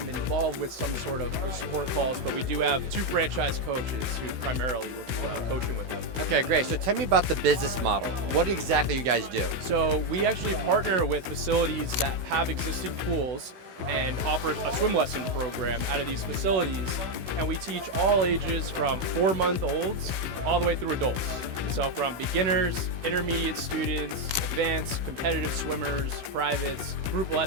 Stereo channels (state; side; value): late; left; 16 ms